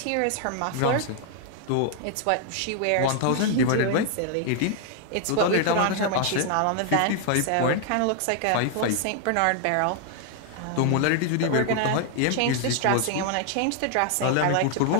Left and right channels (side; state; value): both; different; correlation 0.00